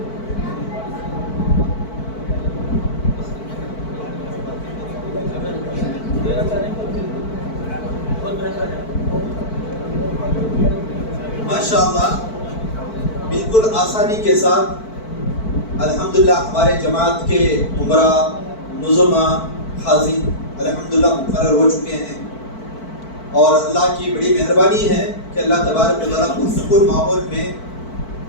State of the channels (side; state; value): right; late; 4.5 ms